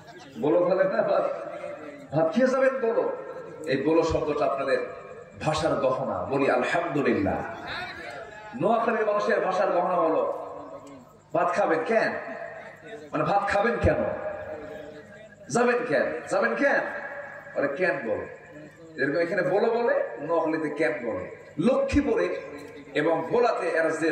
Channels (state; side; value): identical; both; correlation 1.00